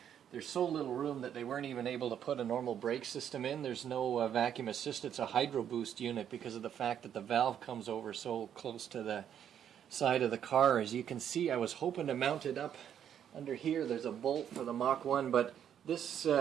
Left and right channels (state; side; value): quieter; left; 9.3 dB